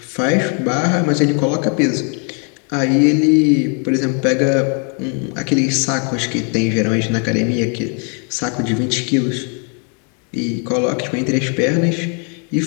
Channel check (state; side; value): quieter; right; 39.5 dB